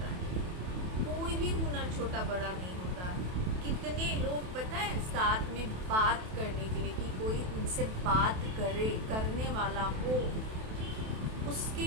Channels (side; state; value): left; late; 28 ms